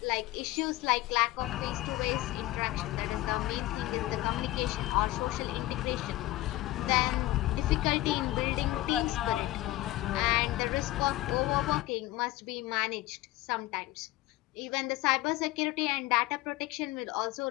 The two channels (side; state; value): right; quieter; 17.3 dB